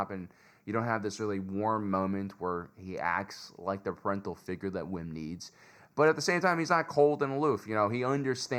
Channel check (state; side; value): identical; both; correlation 1.00